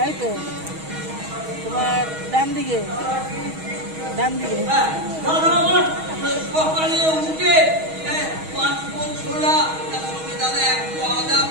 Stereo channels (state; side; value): late; left; 6.3 ms